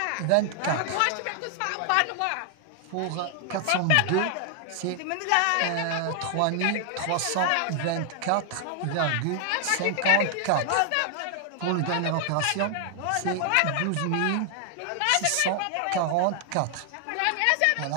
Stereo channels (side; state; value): both; different; correlation 0.00